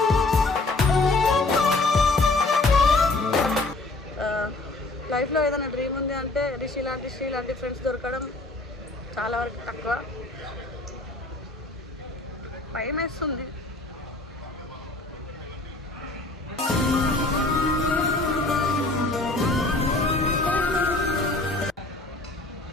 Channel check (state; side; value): quieter; right; 3.1 dB